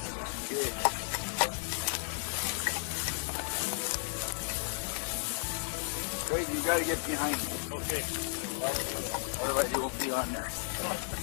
Wait, you gotta get behind me. Okay. Otherwise you won't be on there.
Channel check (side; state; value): right; silent; 55 dB below the other